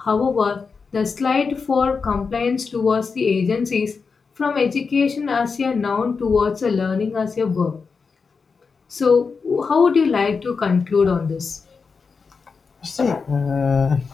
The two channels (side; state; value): right; quieter; 5.1 dB